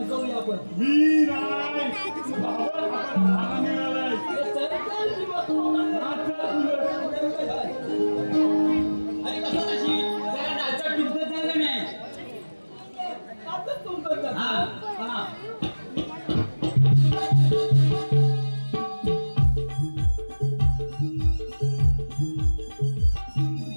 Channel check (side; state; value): both; inverted; correlation -1.00